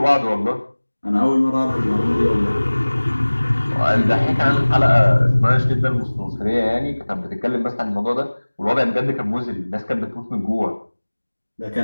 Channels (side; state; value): both; inverted; correlation -1.00